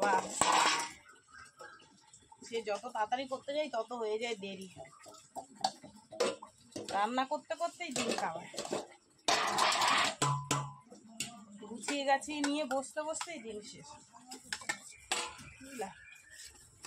সে যত তাড়াতাড়ি করতে যাই তত হয়ে যায় দেরি। রান্না করতে করতেই দিন খাওয়ায়। গুছিয়ে গাছিয়ে নিয়ে বসতে বসতেই দিন শেষ, বুঝলা।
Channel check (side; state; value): both; identical; correlation 1.00